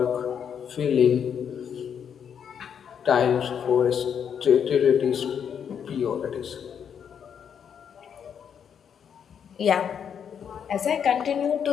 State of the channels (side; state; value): right; quieter; 7.9 dB